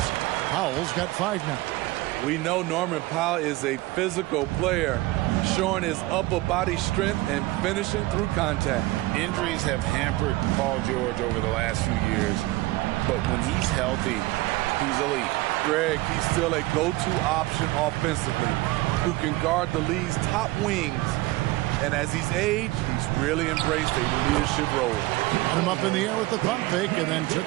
Powell's got 5 now. We know Norman Powell is a physical player, showing his upper body strength and finishing through contact. Injuries have hampered Paul George over the last few years, but when he's healthy, he's elite. Greg, he's still a go-to option offensively, who can guard the league's top wings. And as he's aged, he's really embraced a leadership role. Got him up in the air with the pump fake and then took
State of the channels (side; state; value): left; quieter; 19.4 dB